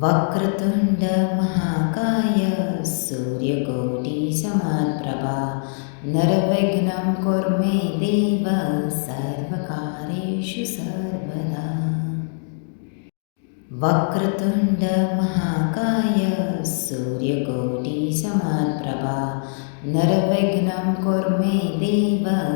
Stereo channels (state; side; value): silent; right; digital silence